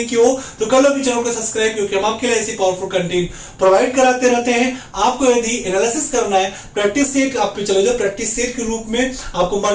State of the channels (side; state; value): both; identical; correlation 1.00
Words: किया हो तो कर लो भी चैनल को सब्सक्राइब, क्योंकि हम आपके लिए ऐसी पावरफुल कंटेंट प्रोवाइड कराते रहते हैं। आपको यदि एनालिसिस करना है, प्रैक्टिस सेट आप पे चले जाओ, प्रैक्टिस सेट के रूप में आपको